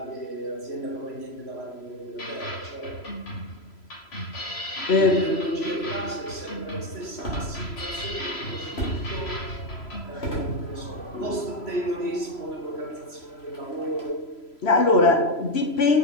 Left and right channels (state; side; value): late; right; 3.0 ms